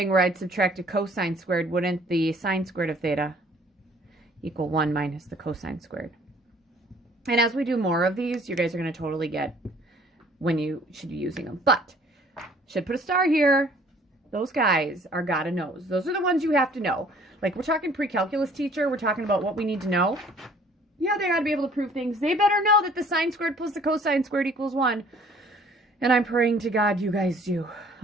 where I'd subtract a cosine squared. Wouldn't the sine squared of theta equal 1 minus the cosine squared? And as we do more of these, you guys are going to totally get when you should be using them. But, should put a star here. Those guys are gotta knows. Those are the ones you have to know. Like, we're talking pre-calculus teacher. We're talking about what we need to know. Yeah, they gotta be able to prove things. They better know that the sine squared plus the cosine squared equals 1. And I'm praying to God you guys do.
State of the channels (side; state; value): both; normal; correlation 0.56